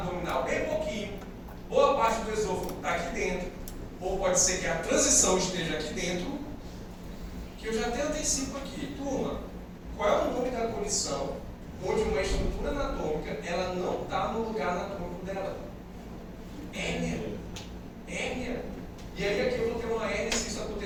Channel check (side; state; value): both; identical; correlation 1.00